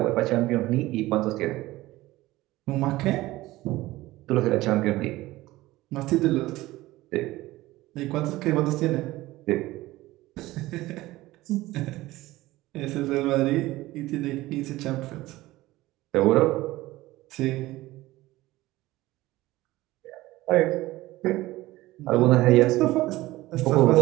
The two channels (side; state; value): left; quieter; 17.9 dB